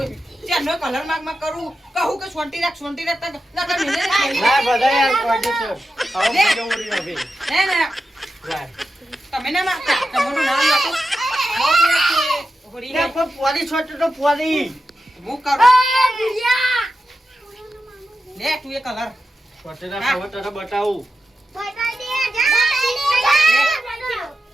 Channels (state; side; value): normal; both; correlation 0.90